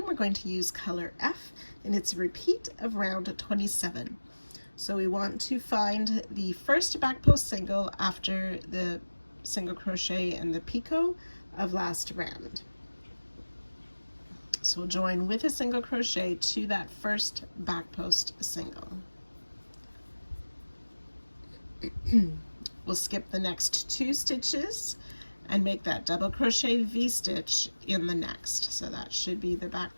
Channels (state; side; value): inverted; both; correlation -1.00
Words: we're going to use color F, and it's a repeat of round 27. So we want to find the first back post single after the single crochet and the picot of last round. So we'll join with a single crochet to that first back post single. We'll skip the next 2 stitches and make that double crochet V-stitch in the next. So that should be the back